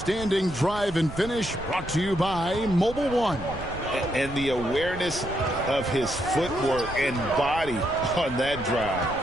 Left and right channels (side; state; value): right; noise; rumble, 13 dB below the sound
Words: drive and finish brought to you by Mobile One. And the awareness of his footwork and body on that drive.